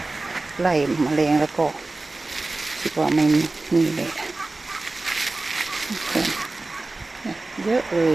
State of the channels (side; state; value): left; quieter; 3.2 dB